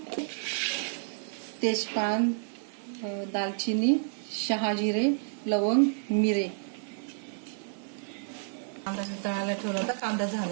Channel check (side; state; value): left; silent; 58 dB below the other